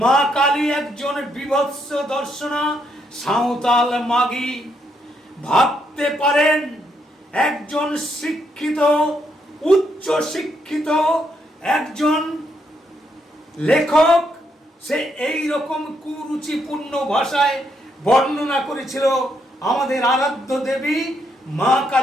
মা কালী একজন বিভৎস দর্শনা সাঁওতাল মাগী। ভাবতে পারেন একজন শিক্ষিত, উচ্চ শিক্ষিত একজন লেখক সে এই রকম কুরুচিপূর্ণ ভাষায় বর্ণনা করেছিল আমাদের আরাধ্য দেবী মা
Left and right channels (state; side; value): normal; both; correlation 0.76